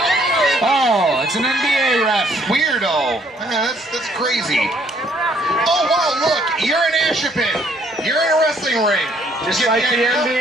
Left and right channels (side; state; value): both; normal; correlation 0.65